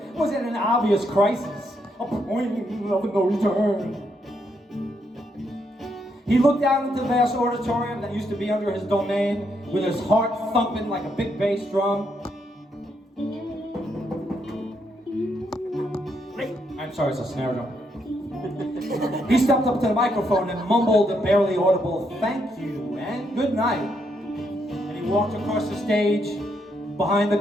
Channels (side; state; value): both; normal; correlation 0.77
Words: was at an obvious crisis, a point of no return. He looked out into the vast auditorium that used to be under his domain, with his heart thumping like a big bass drum. I'm sorry, it's a snare drum. He stepped up to the microphone and mumbled a barely audible "thank you" and "good night." And he walked across the stage, behind the